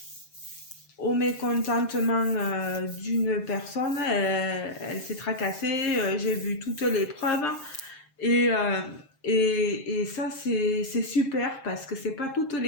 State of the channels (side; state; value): right; late; 7.5 ms